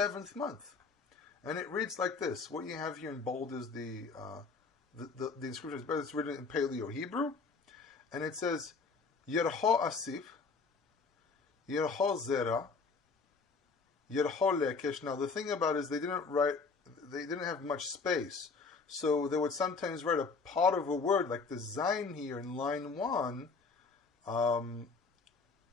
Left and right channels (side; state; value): right; quieter; 4.6 dB